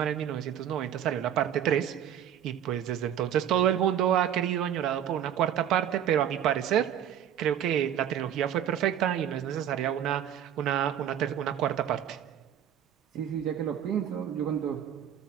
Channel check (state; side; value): quieter; left; 9.9 dB